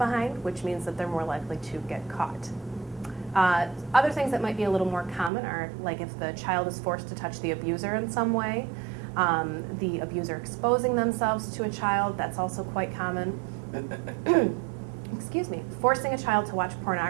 which means that they're more likely to get caught. Other things that might be a little more common are like if the child is forced to touch the abuser in some way, the abuser exposing themselves to a child, that's also quite common. Excuse me. Forcing a child to watch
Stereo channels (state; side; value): drops out; left; at 5.3 s